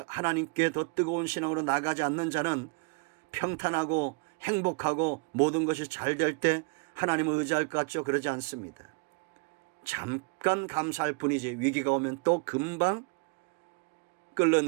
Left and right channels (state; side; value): quieter; left; 32.5 dB